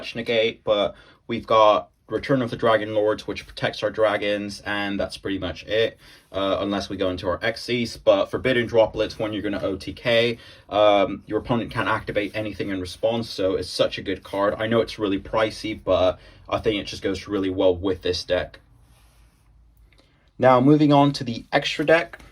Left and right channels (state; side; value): identical; both; correlation 1.00